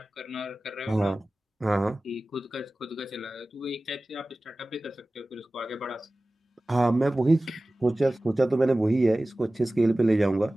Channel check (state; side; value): normal; both; correlation 0.97